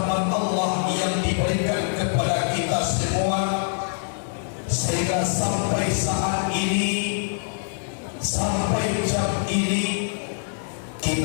Allah yang diberikan kepada kita semua sehingga sampai saat ini, sampai jam ini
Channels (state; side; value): silent; right; 61 dB below the other